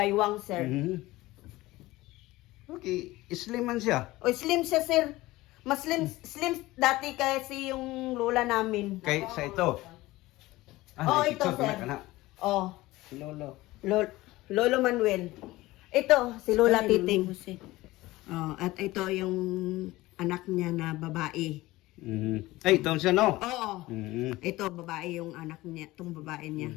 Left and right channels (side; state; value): right; quieter; 18.7 dB